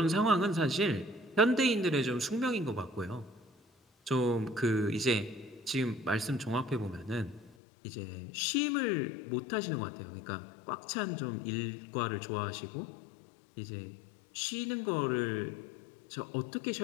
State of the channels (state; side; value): drops out; right; at 7.6 s